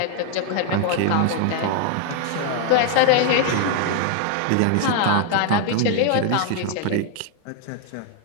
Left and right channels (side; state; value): both; different; correlation 0.00